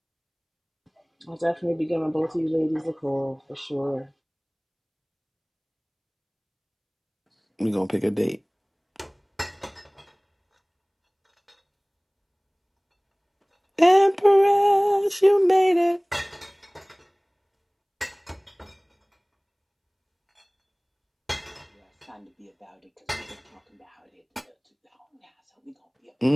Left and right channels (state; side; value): identical; both; correlation 1.00